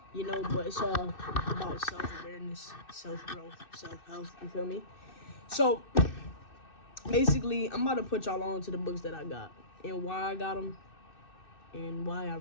you know, but it's all about self-awareness, self-growth, self-help, you feel me? So, basically, I'm about to put y'all on to the books that I got and why I got them and why I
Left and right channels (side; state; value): right; late; 2.6 ms